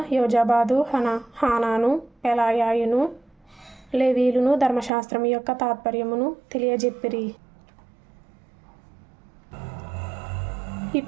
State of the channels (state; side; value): drops out; left; at 4.9 s